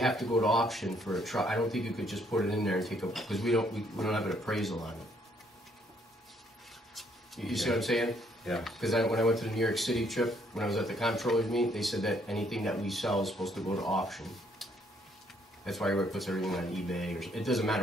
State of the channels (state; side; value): normal; both; correlation 0.68